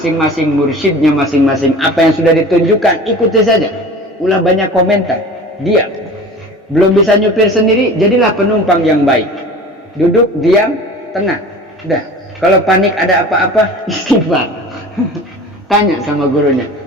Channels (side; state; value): both; normal; correlation 0.39